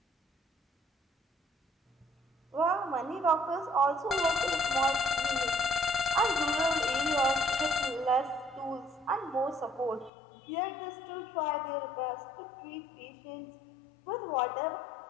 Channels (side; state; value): right; drops out; at 10.1 s